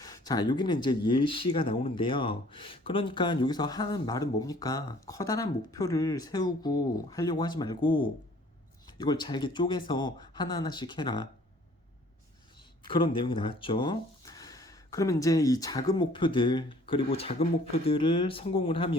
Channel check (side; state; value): both; normal; correlation 0.55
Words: 자, 여기는 이제 예시가 나오는데요. 그러니까 여기서 하는 말은 뭡니까? 커다란 목표를 세우고 하려고 하지 말고 이걸 잘게 쪼개서 하나하나씩 해라. 그런 내용이 나왔죠. 그러면 이제 이 작은 목표들, 그리고 작은 목표들을 성공을